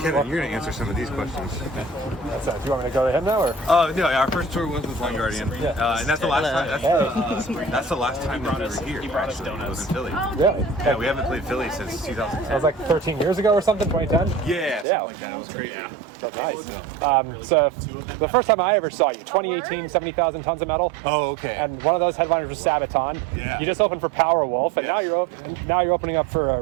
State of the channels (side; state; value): left; drops out; at 14.9 s